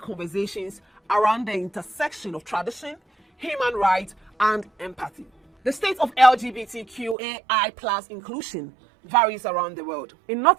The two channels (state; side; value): drops out; left; at 7.2 s